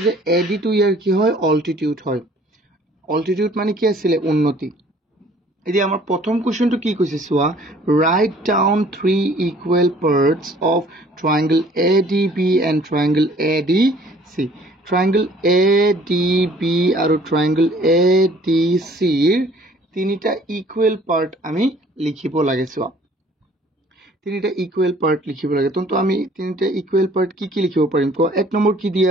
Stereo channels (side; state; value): both; normal; correlation 0.55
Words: যে AD টো ইয়াৰ কি হয় altitude হয় altitude মানে কি আছিল উন্নতি এতিয়া আমাৰ প্ৰথম কোৱেশ্চনটো কি কৈছে সোৱা write down three equal parts of triangle ADB and triangle ADC triangle ADB আৰু triangle ADC তিনিটা equal part আমি লিখিব লাগে সোৱা তিনিটা equal part লিখিব লাগে তো আমি তিনিটা equal part কি লিখিব পাৰিম কো এক নম্বৰ কি দিয়া